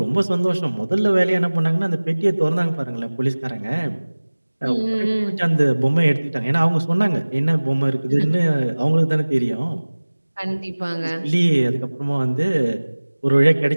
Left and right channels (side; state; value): both; inverted; correlation -1.00